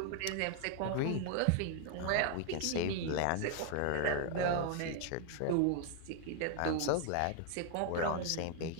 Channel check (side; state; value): both; different; correlation 0.00